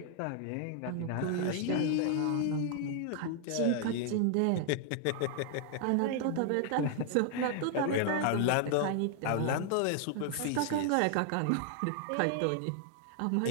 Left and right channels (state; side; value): different; both; correlation 0.00